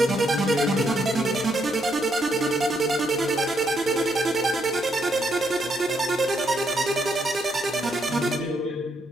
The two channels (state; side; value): normal; both; correlation 0.76